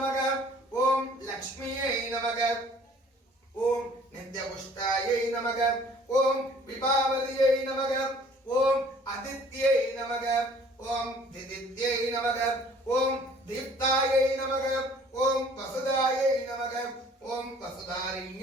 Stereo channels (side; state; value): both; normal; correlation 0.54